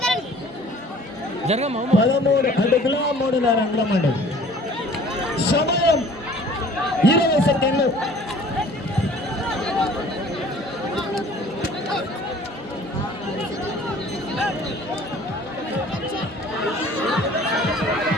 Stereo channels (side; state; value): both; normal; correlation 0.50